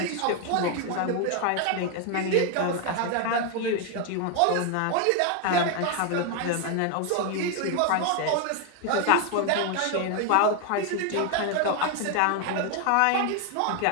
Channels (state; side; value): different; both; correlation 0.01